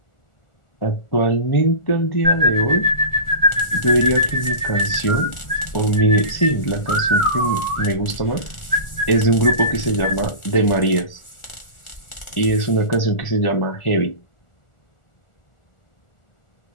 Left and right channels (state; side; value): late; right; 1.4 ms